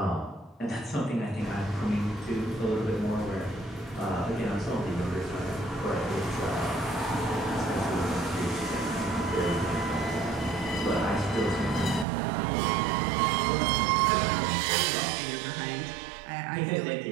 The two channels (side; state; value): left; drops out; at 12.1 s